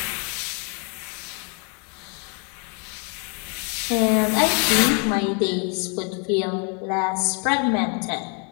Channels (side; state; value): right; quieter; 38.0 dB